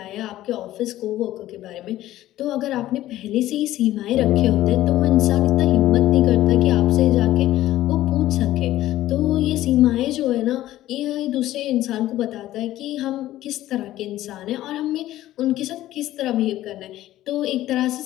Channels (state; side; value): quieter; right; 14.5 dB